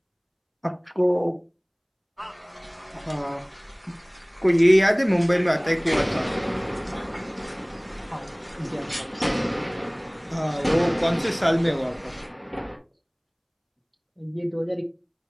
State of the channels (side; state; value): both; identical; correlation 1.00